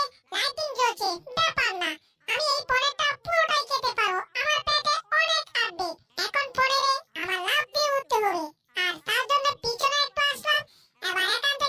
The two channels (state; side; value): identical; both; correlation 1.00